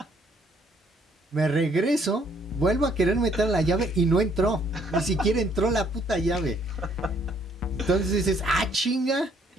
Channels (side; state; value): both; normal; correlation 0.66